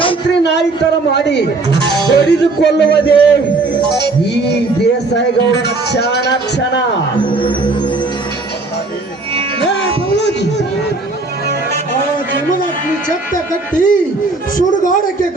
ನಾಯಿ ತರ ಮಾಡಿ ಹೊಡೆದುಕೊಳ್ಳುವುದೇ ಈ ದೇಸಾಯಿ ಗೌಡನ ಕ್ಷಣ. ಆ ಜಮದಗ್ನಿ ಛತ್ತ ಕಟ್ಟಿ ಸುಡುಗಾಡಕ್ಕೆ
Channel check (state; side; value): quieter; left; 3.4 dB